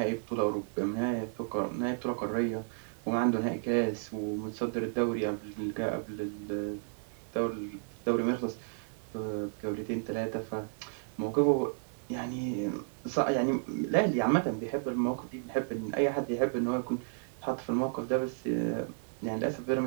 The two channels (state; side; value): silent; left; digital silence